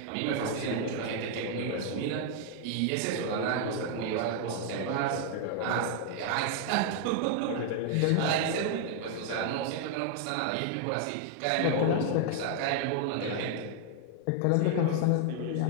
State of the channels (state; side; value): different; both; correlation 0.00